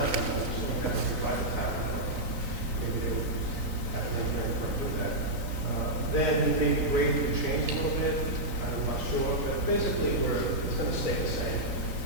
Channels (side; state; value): left; late; 3.9 ms